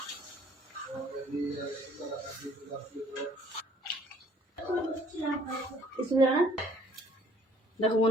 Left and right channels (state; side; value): normal; both; correlation 0.59